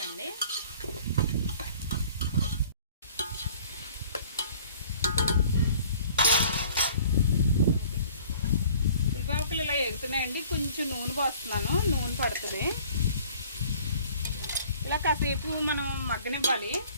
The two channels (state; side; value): inverted; both; correlation -0.51